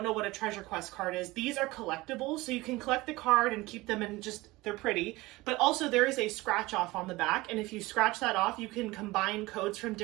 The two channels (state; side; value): quieter; left; 20.5 dB